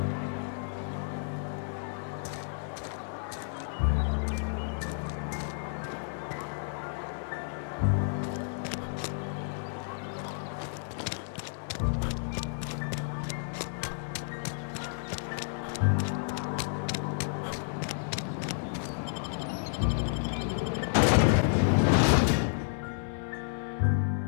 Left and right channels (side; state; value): right; silent; digital silence